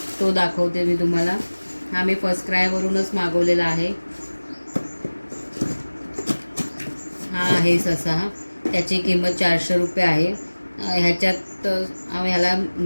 तो दाखवते मी तुम्हाला. हा मी फर्स्ट क्रायवरूनच मागवलेला आहे. हा आहे ससा. त्याची किंमत 400 रुपये आहे. ह्याच्यात ह्याला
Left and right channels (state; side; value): inverted; both; correlation -1.00